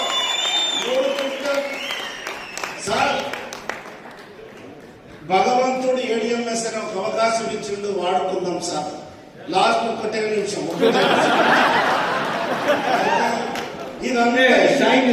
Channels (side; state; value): both; identical; correlation 1.00